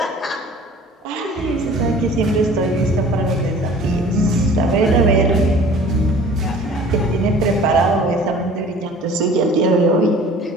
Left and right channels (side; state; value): both; normal; correlation 0.47